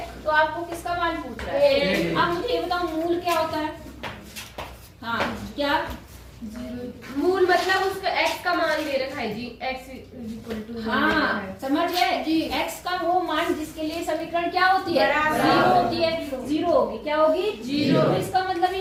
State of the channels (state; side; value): identical; both; correlation 1.00